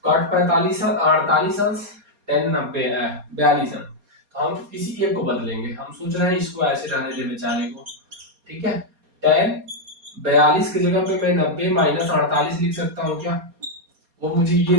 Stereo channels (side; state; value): left; late; 4.2 ms